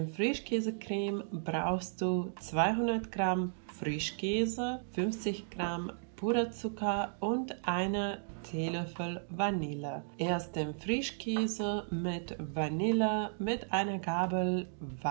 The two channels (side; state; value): left; silent; digital silence